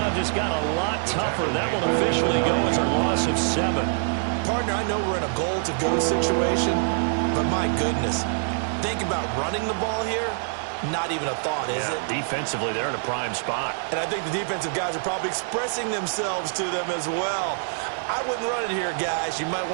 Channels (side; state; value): left; silent; digital silence